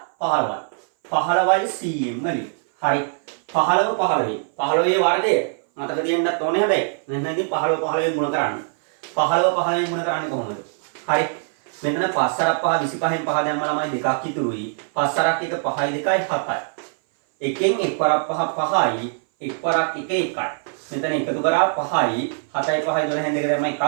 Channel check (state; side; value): silent; left; 60 dB below the other